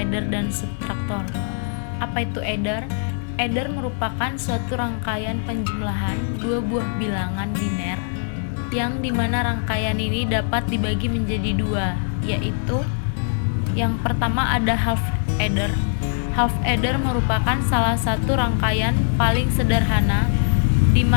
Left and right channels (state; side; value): silent; right; digital silence